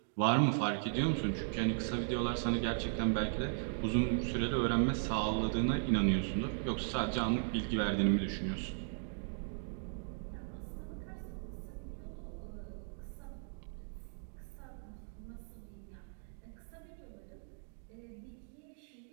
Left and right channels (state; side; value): silent; left; digital silence